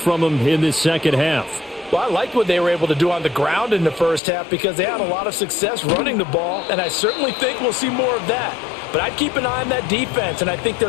them in this second half? Well, I liked what they were able to do on the ground in the first half because they had a lot of success running the ball, and I certainly think we'll see more of that. But I'd keep an eye on that defense, and I think their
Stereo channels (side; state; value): right; drops out; at 4.2 s